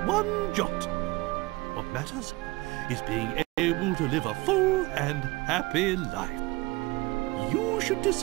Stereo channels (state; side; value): quieter; left; 22.4 dB